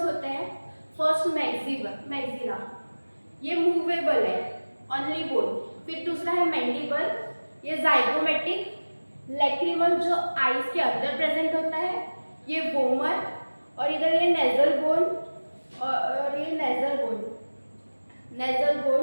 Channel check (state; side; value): inverted; both; correlation -1.00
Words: होते हैं, फर्स्ट मैक्सिला, ये मूवेबल है, ओनली बोन। फिर दूसरा है मैंडिबल, ये जाइगोमेटिक, लैक्रिमल जो आईज के अंदर प्रेजेंट होता है, ये वोमर, और इधर ये नेजल बोन और ये नेजल बोन।